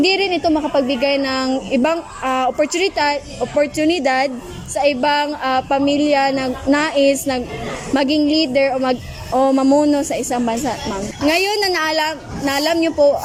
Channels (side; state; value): both; identical; correlation 1.00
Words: rin ito makapagbigay ng ibang oportunidad sa ibang pamilya na nais maging leader o mamuno sa isang bansa, ma'am. Ngayon na naalam niyo po